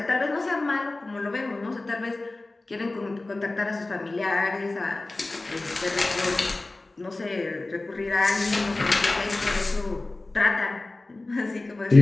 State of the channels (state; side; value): quieter; right; 3.0 dB